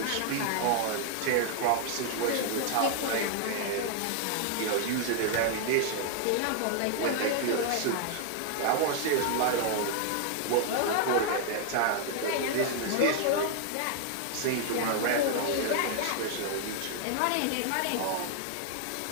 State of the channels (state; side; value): different; both; correlation 0.00